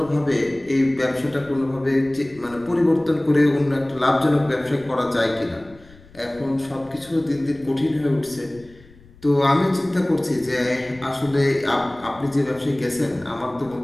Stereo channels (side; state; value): left; noise; rumble, 25 dB below the sound